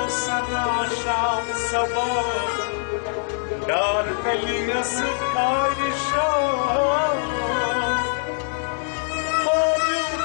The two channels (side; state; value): right; silent; digital silence